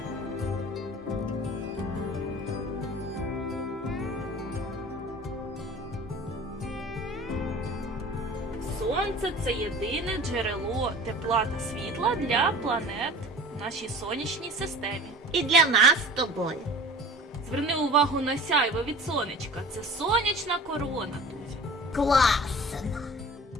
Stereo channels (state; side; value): normal; both; correlation 0.42